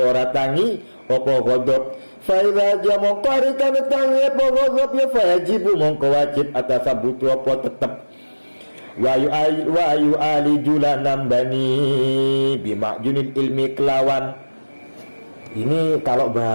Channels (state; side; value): inverted; both; correlation -1.00